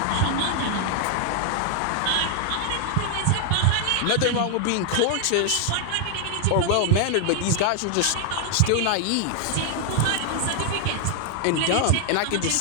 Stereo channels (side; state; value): both; different; correlation 0.00